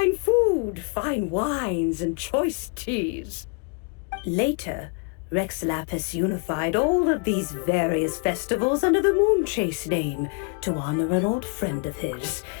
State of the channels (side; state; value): right; quieter; 35.3 dB